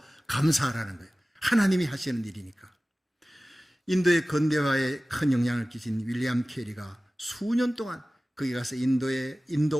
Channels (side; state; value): both; normal; correlation 0.97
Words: 감사하라는 거예요. 하나님이 하시는 일이니까. 인도의 근대화에 큰 영향을 끼친 윌리엄 캐리가 수년 동안 거기 가서